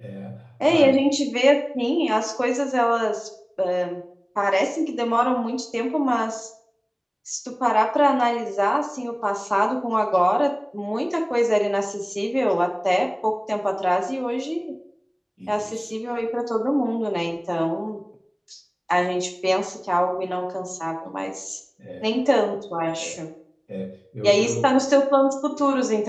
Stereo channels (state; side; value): identical; both; correlation 1.00